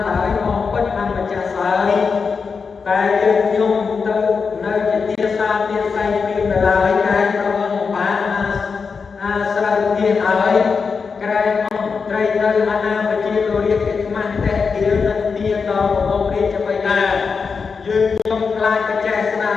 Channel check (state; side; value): quieter; right; 5.3 dB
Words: ហើយមកពិតអម្ចាស់ស្រីតែយើងខ្ញុំទៅនៅជាទាសាទាស័យពីនៅឡើយក្រែងប្រងបានអាស្រ័យទានហើយក្រែងអង្គត្រីនៅអាណាប្រជាលោករាជកិច្ចមាស់តែទាននឹងទានដល់របស់រាជបិតាយើងខ្ញុំខ្លាចបច្ចេស្នា